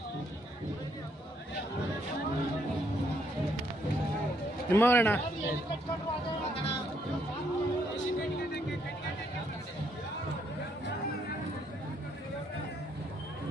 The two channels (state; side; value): normal; both; correlation 0.72